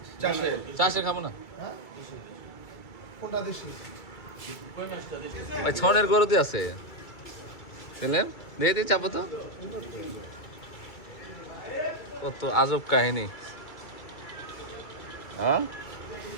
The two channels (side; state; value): right; late; 2.3 ms